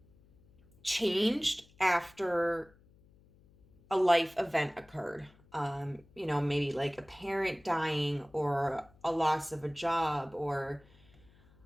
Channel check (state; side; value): noise; left; hum, 28 dB below the sound